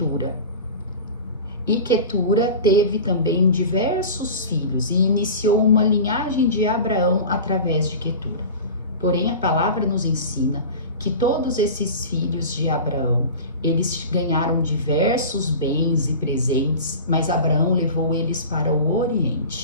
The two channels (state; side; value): inverted; both; correlation -0.34